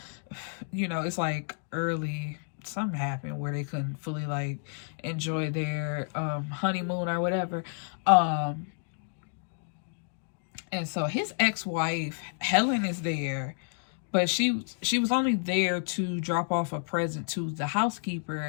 It's like early, something happened where they couldn't fully like enjoy their honeymoon or whatever. And so his ex-wife, Helen, is there, but she was only there to drop off a present to the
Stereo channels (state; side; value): silent; right; 58 dB below the other